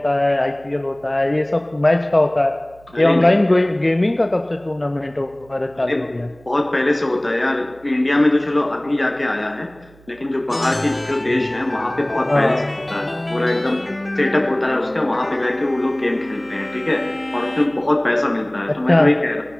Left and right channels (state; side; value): noise; right; hum, 27 dB below the sound